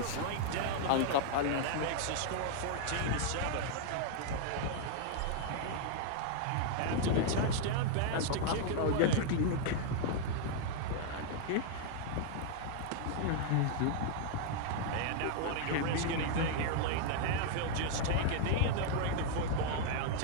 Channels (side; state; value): both; different; correlation 0.00